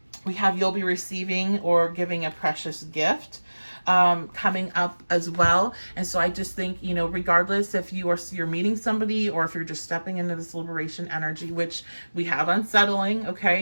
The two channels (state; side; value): inverted; both; correlation -1.00